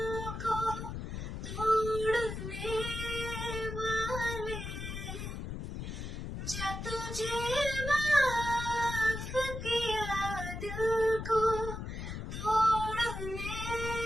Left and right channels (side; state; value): left; noise; rumble, 6 dB below the sound